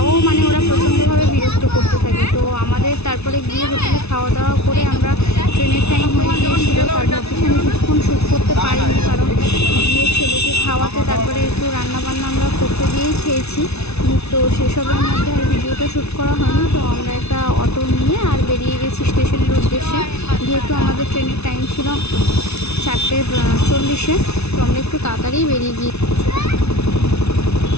মানে ওরা প্রচণ্ডভাবে বিরক্ত করতে থাকে। তো আমাদের তারপরে গিয়ে হোটেলে খাওয়া দাওয়া করে আমরা ট্রেনের টাইম হয়ে গিয়েছিল, তার অফিসে আমি কিছুক্ষণ শ্যুট করতে পারিনি, কারণ গিয়ে ছেলেকে খাওয়াতে তারপরে একটু রান্নাবান্না আমরা করতে গিয়েই খেয়েছি। তো সেসবের মধ্যে আর ভিডিওটা শ্যুট করা হয়নি। তো আমরা একটা অটো নিয়ে আর বেরিয়ে গেছি স্টেশনের উদ্দেশ্যে, যেহেতু আমাদের ট্রেনের টাইম ছিল 4:40-এ। তো আমরা একটু তাড়াতাড়ি বেরিয়ে গিয়ে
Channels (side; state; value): right; late; 0.80 ms